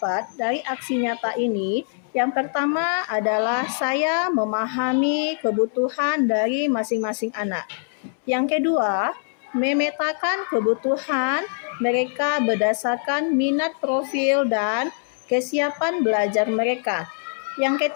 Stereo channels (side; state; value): right; silent; 63 dB below the other